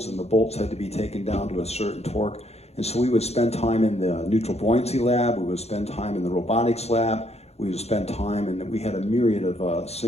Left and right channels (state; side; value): late; right; 0.31 ms